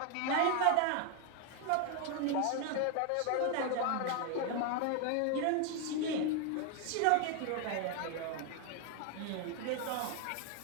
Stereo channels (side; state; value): both; different; correlation 0.01